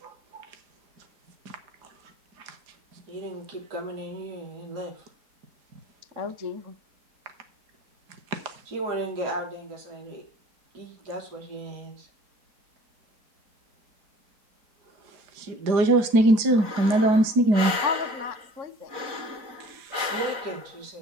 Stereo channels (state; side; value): late; left; 4.1 ms